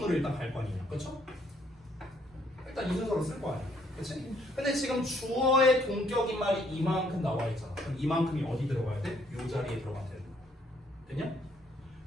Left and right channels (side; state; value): both; normal; correlation 0.68